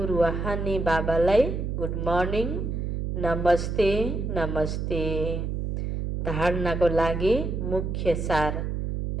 रुहानी बाबालाई गुड मर्निङ, नमस्ते नमस्ते। धारणाको लागि मुख्य सार।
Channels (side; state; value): right; noise; hum, 2 dB below the sound